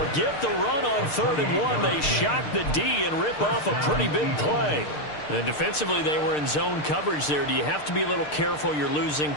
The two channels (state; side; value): late; right; 6.6 ms